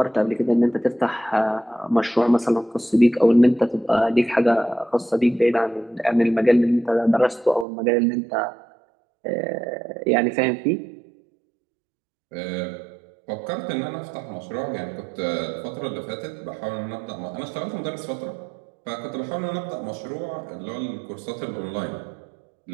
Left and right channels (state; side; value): drops out; left; at 7.7 s